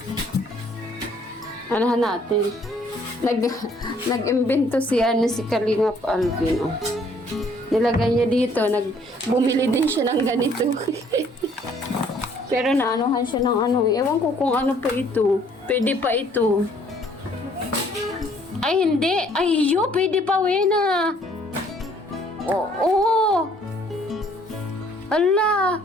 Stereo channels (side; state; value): both; normal; correlation 0.61